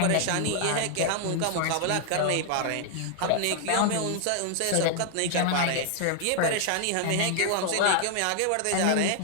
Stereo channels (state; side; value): different; both; correlation 0.00